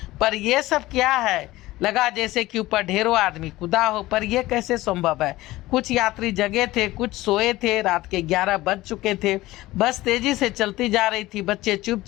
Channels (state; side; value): quieter; right; 17.8 dB